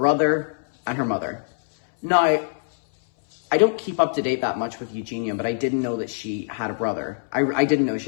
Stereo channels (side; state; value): right; silent; 63 dB below the other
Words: and her mother. Now, I don't keep up to date that much with Eugenia, but I didn't know that she had a brother. I didn't know she